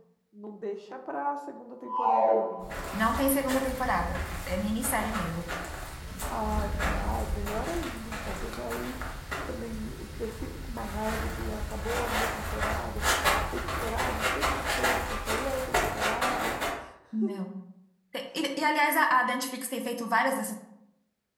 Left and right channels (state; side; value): identical; both; correlation 1.00